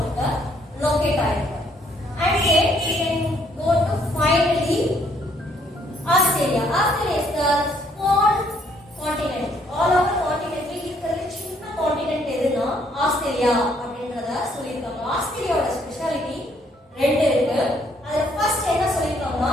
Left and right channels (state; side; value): normal; both; correlation 0.67